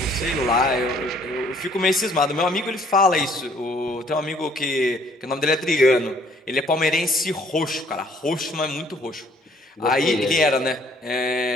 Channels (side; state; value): both; normal; correlation 0.61